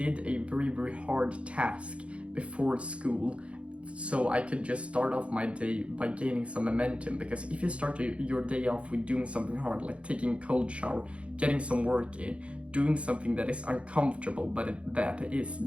a very, very hard task before school so I could just start off my day by gaining some momentum, because if you start your day off with doing something hard, like taking a cold shower, getting some work in, doing something that is uncomfortable but that is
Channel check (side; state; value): left; late; 0.061 ms